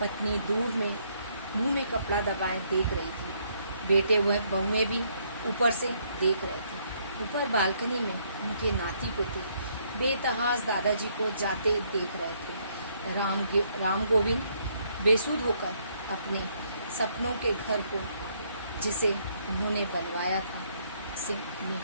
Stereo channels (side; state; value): both; inverted; correlation -0.70